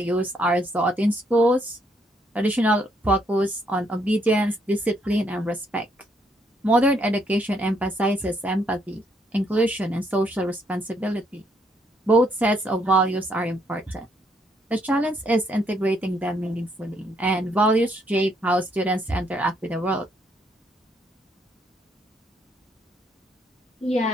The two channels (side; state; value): both; normal; correlation 0.72